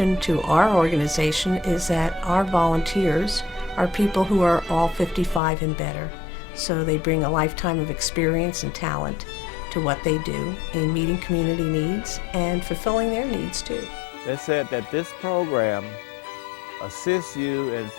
to our organization is that our volunteers are people who are all 55 and better. So they bring a lifetime of experience and talent to what they do in meeting community needs and fulfilling their needs too. They said that this program assists you in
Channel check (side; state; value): right; drops out; at 5.4 s